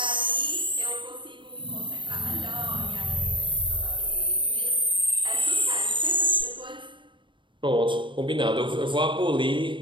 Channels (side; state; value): left; late; 0.24 ms